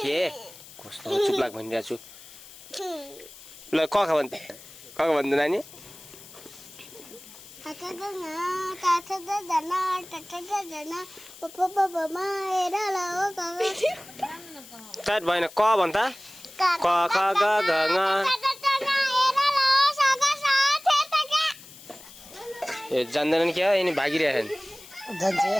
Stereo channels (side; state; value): left; noise; hiss, 19 dB below the sound